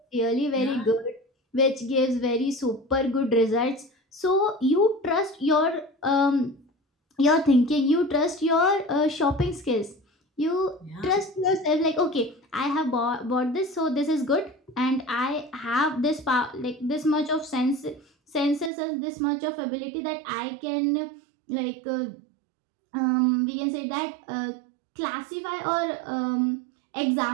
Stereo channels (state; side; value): drops out; left; at 18.7 s